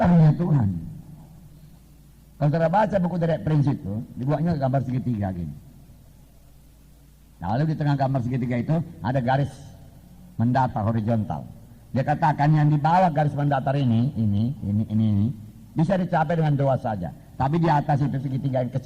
Tuhan. Kalau saudara baca buku dari prinsip itu, dibuatnya gambar segitiga gini. Nah, lalu di tengah gambar segitiga itu ada garis mendatar horizontal. Dia katakan yang di bawah garis mendatar ini bisa dicapai dengan doa saja. Tapi di atas itu segitiga yang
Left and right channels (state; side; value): identical; both; correlation 1.00